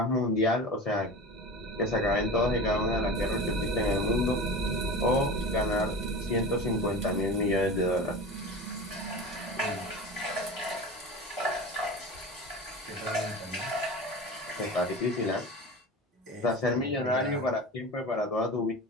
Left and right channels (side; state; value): both; normal; correlation 0.31